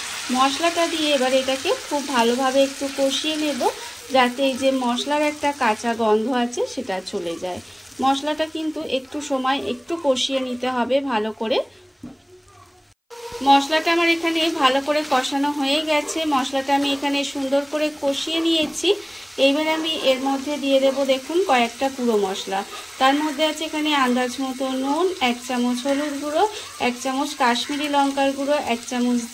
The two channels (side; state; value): both; identical; correlation 1.00